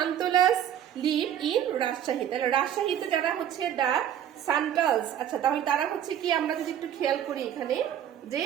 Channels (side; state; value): left; quieter; 10.2 dB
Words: live in Rajshahi. তাহলে রাজশাহীতে যারা হচ্ছে দ্য সান্টালস, আচ্ছা তাহলে তারা হচ্ছে কি, আমরা যদি একটু খেয়াল করি এখানে যে